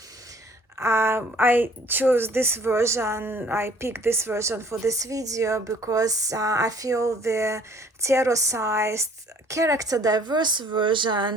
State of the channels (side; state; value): both; normal; correlation 0.55